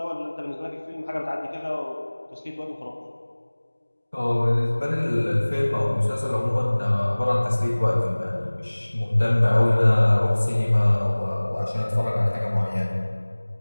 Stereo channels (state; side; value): inverted; both; correlation -1.00